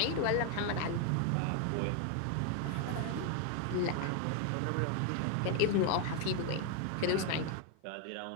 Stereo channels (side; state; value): both; different; correlation 0.01